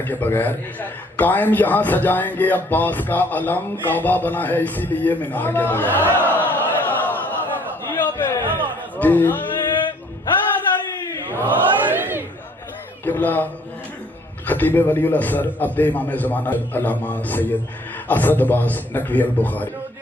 کے بغیر. قائم یہاں سجائیں گے عباس کا علم، کعبہ بنا ہے اسی لیے مینار کے بغیر. جی قبلہ خطیب ولی الاسر عبد امام زمانہ علامہ سید اسد عباس نقوی البخاری.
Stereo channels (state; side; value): normal; both; correlation 0.60